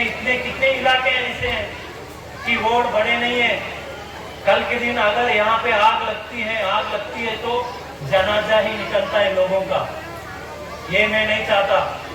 कितने इलाके ऐसे हैं कि रोड बड़े नहीं है। कल के दिन अगर यहाँ पे आग लगती है तो जनाजा ही निकलता है लोगों का। ये मैं नहीं चाहता।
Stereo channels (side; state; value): both; identical; correlation 1.00